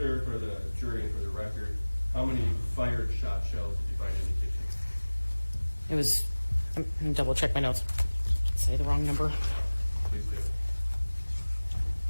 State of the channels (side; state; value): both; inverted; correlation -1.00